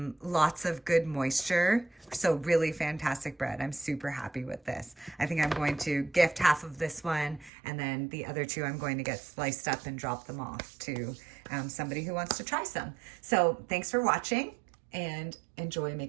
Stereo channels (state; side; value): drops out; left; at 7.5 s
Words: Lots of good moisture. So really fantastic bread. I'm super happy with this. I think I'm going to gift half of this one, and then the other 2 I'm going to get sliced up and drop them off to somebody who wants to try some. So thanks for watching and enjoy